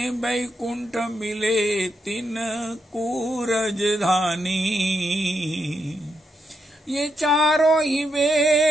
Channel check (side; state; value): both; normal; correlation 0.82